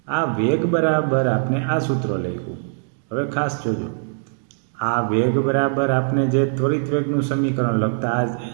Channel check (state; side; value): silent; left; 65 dB below the other